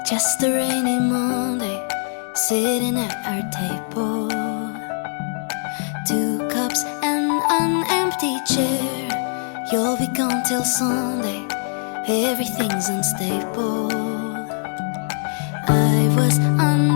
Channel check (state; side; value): silent; right; digital silence